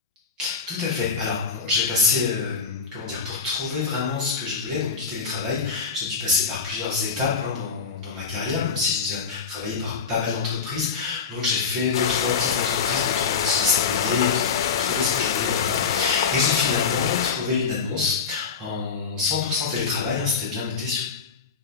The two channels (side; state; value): right; quieter; 5.7 dB